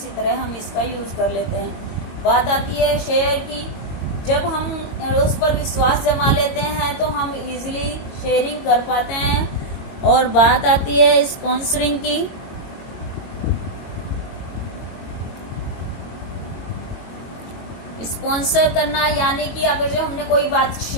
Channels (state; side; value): late; right; 22 ms